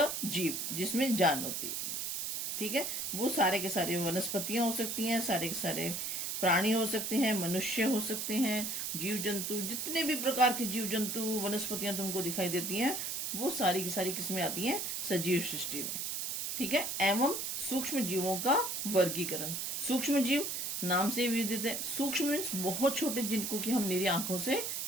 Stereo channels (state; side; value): noise; right; hiss, 2 dB below the sound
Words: जिसमें जान होती है। ठीक है, वो सारे के सारे वनस्पतियां हो सकती हैं, सारे के सारे प्राणी हो सकते हैं, मनुष्य हो सकते हैं, जीव जंतु, जितने भी प्रकार के जीव जंतु वनस्पतियां तुमको दिखाई देती हैं वो सारी की सारी किसमें आती हैं, सजीव सृष्टि में। ठीक है, एवं सूक्ष्म जीवों का वर्गीकरण। सूक्ष्म जीव नाम से विदित है। सूक्ष्म मीन्स बहुत छोटे, जिनको कि हम निरी आंखों से